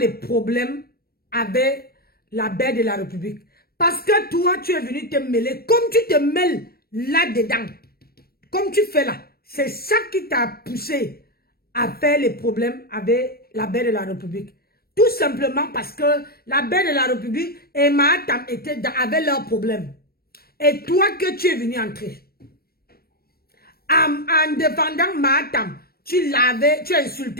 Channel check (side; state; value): right; late; 0.44 ms